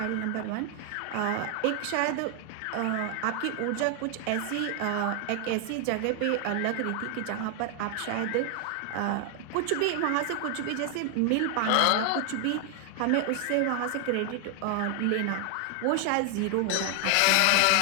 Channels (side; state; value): both; different; correlation 0.00